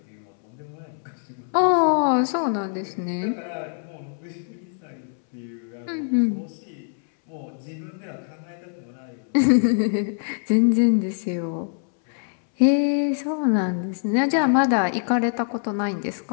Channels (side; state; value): right; silent; 62 dB below the other